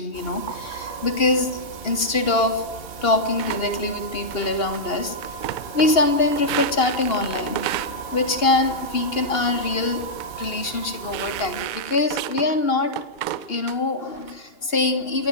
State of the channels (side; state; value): right; late; 2.8 ms